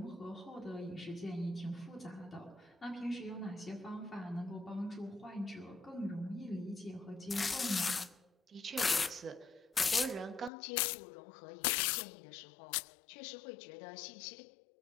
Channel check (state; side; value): drops out; right; at 10.5 s